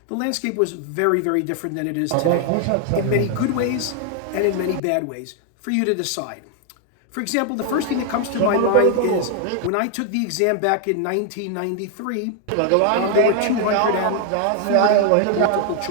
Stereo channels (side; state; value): both; different; correlation 0.00